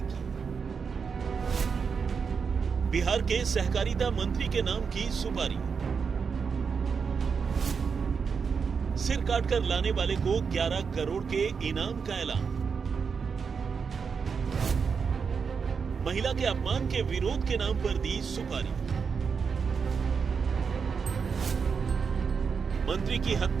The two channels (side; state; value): left; quieter; 5.8 dB